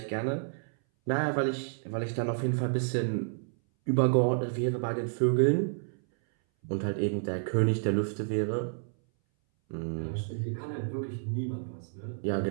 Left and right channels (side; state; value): left; silent; 58 dB below the other